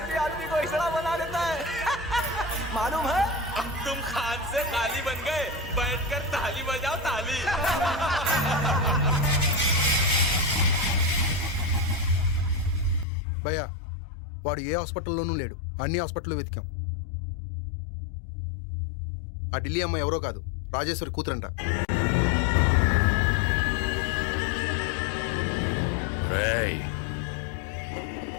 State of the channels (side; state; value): right; drops out; at 13.1 s